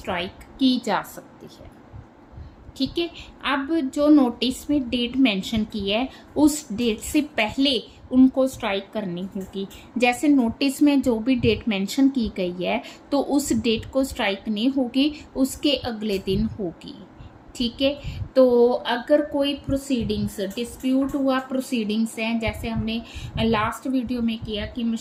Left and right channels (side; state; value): both; identical; correlation 1.00